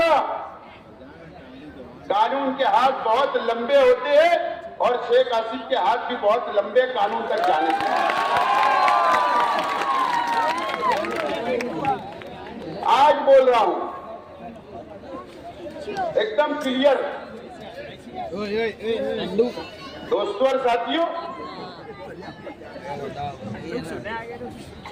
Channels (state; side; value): identical; both; correlation 1.00